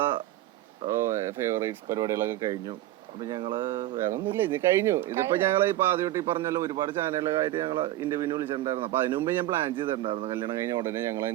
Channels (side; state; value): left; quieter; 14.6 dB